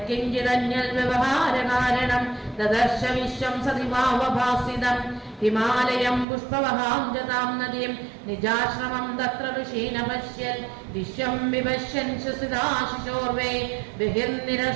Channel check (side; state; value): left; drops out; at 6.2 s